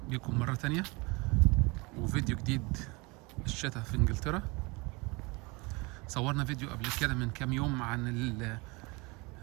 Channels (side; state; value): left; quieter; 26.4 dB